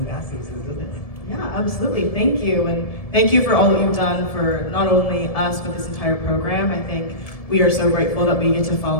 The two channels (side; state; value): right; late; 1.7 ms